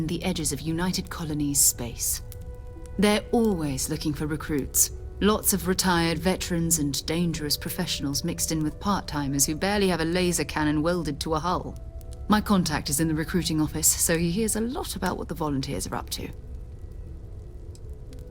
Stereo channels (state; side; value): identical; both; correlation 1.00